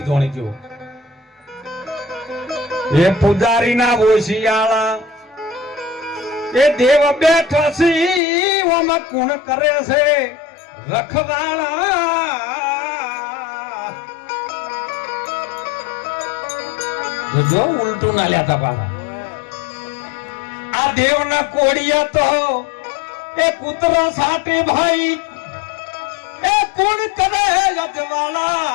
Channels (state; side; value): drops out; right; at 8.2 s